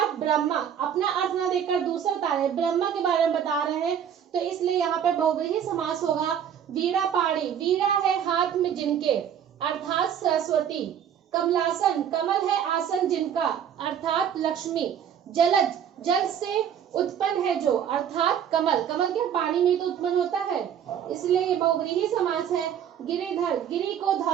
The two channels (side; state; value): left; quieter; 8.8 dB